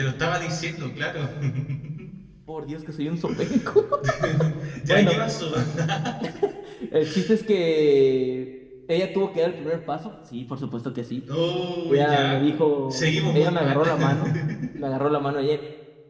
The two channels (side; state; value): both; identical; correlation 1.00